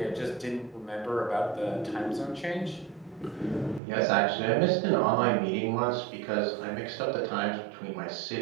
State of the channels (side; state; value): left; drops out; at 3.8 s